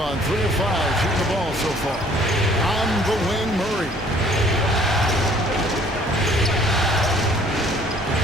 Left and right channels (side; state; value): both; normal; correlation 0.57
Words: 3 of 5 shooting the ball so far. On the wing, Murray.